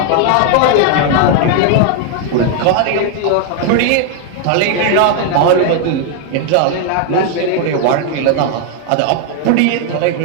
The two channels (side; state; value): both; different; correlation 0.01